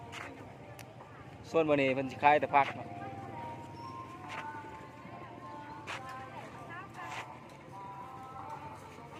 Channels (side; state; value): both; identical; correlation 1.00